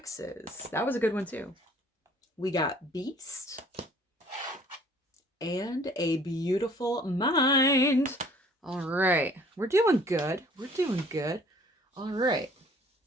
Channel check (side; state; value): both; normal; correlation 0.55